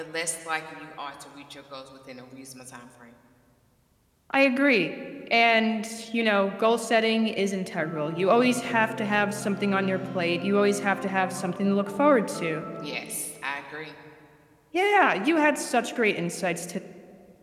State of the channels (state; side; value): identical; both; correlation 1.00